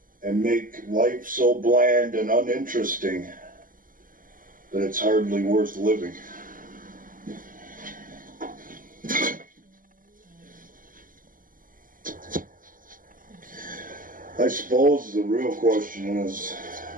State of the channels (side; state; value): left; late; 0.40 ms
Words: and make life so bland and uninteresting that it's hardly worth living. I suppose the real question is